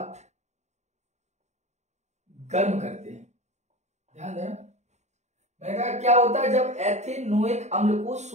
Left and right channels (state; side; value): late; left; 0.33 ms